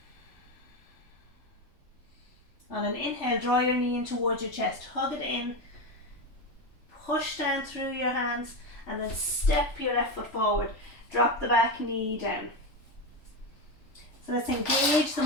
On an inhale, draw your knee in towards your chest, hug it in, push down through your hands, and then step your left foot forward. Drop the back knee down. So let's engage the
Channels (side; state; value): right; late; 3.4 ms